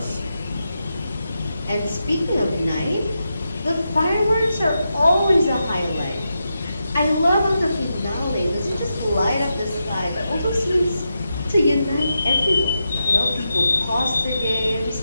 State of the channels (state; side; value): inverted; both; correlation -0.87